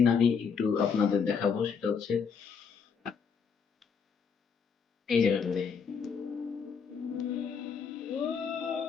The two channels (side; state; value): right; quieter; 6.2 dB